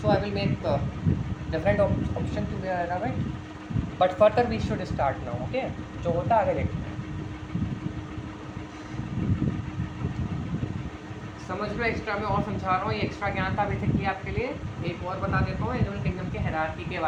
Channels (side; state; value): both; identical; correlation 1.00